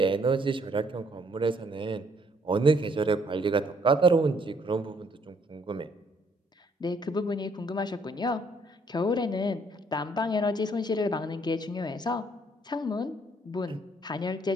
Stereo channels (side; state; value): both; normal; correlation 0.67